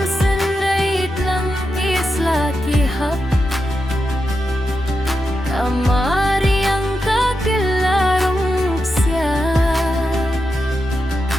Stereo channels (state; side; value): normal; both; correlation 0.88